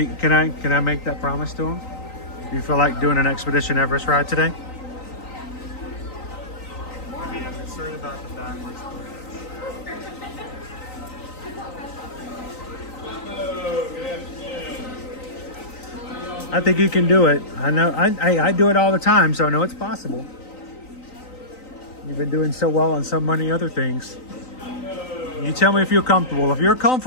Can I make that promise to him? Do you feel like doing an Expedition Everest ride today? I mean, I'm concerned about the backwards push. I think you can do it. I know. I do it all the time, so I know it's possible. You've been doing so well on so many other things. You tell me if you're comfortable. If you're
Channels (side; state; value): right; late; 3.9 ms